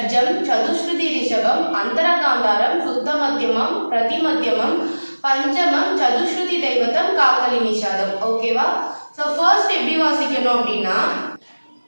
சதுஸ்ருதி ரிஷபம், அந்தரகாந்தாரம், சுத்த மத்தியமம், பிரதிமத்தியமம், பஞ்சமம், சதுஸ்ருதி தெய்வத்தம், காக்கலி நிஷாதம். ஓகேவா? ஸோ ஃபர்ஸ்ட் எப்படி வாசிக்கணும் அப்படின்னா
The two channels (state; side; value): inverted; both; correlation -1.00